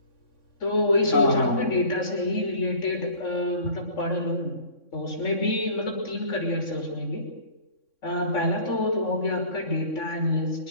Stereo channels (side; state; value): right; late; 3.6 ms